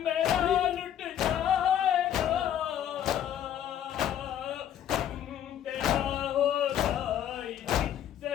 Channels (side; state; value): right; quieter; 10.4 dB